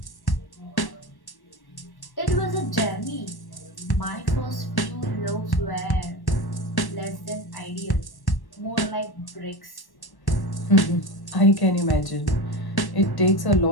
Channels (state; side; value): late; right; 1.1 ms